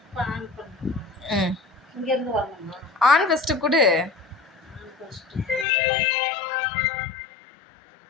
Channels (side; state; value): right; drops out; at 5.7 s